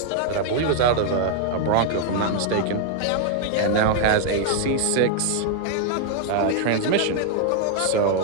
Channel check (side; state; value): both; different; correlation 0.00